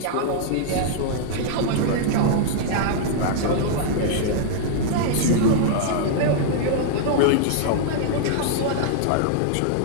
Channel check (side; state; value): both; different; correlation -0.01